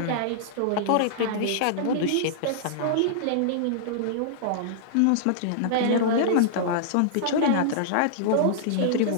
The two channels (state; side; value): different; both; correlation -0.01